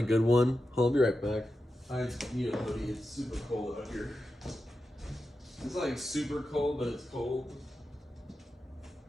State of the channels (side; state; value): both; normal; correlation 0.90